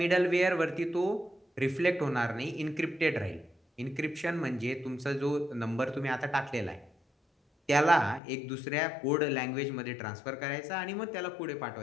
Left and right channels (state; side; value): drops out; right; at 8.2 s